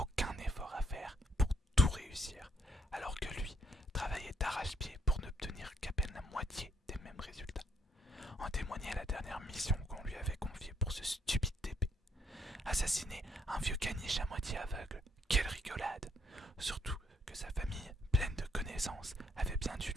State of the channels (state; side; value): normal; both; correlation 0.70